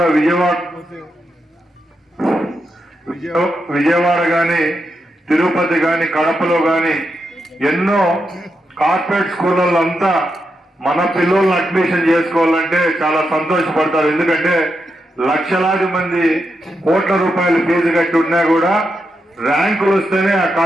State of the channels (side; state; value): both; normal; correlation 0.85